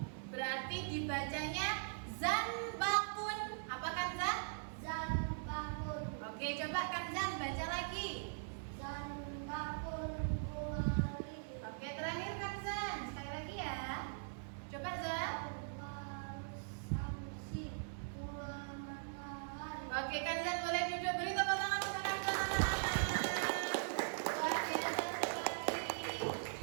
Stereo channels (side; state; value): left; silent; digital silence